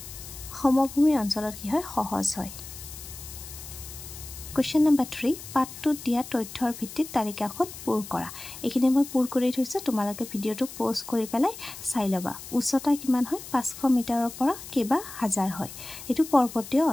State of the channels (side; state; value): left; noise; hiss, 13 dB below the sound